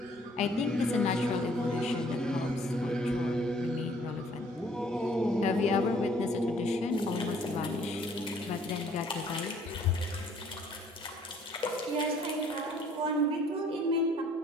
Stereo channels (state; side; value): normal; both; correlation 0.60